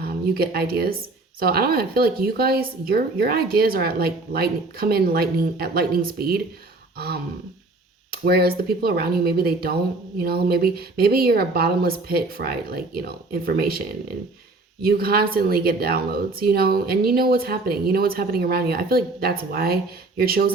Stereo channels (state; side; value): quieter; left; 3.2 dB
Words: you get ideas. So I don't know, I feel like you guys, your ideas are at like lightning speed. Whereas the people around you, maybe they don't, you know, maybe you're a bottomless pit for like, you know, information, and you constantly get downloads, you know, and you know what's happening. You know what's happening around you. I feel like that's why you're